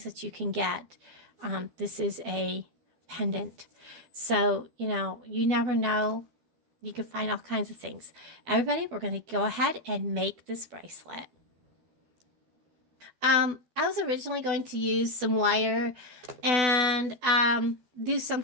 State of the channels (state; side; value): late; left; 12 ms